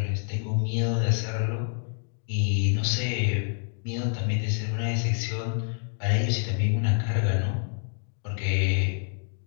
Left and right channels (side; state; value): right; silent; 60 dB below the other